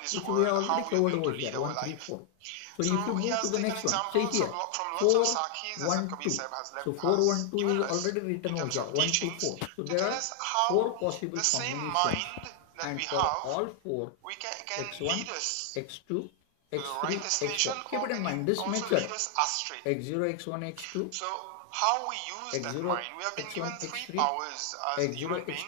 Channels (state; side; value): different; both; correlation 0.00